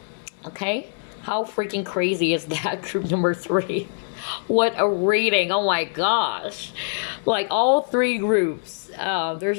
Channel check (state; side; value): silent; right; 61 dB below the other